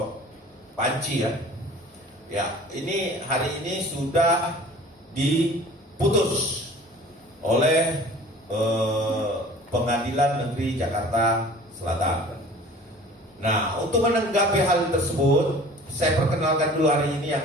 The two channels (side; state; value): both; normal; correlation 0.46